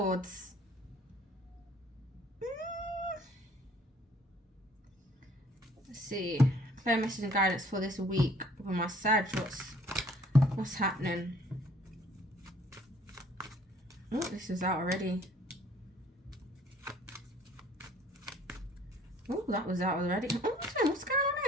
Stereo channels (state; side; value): normal; both; correlation 0.57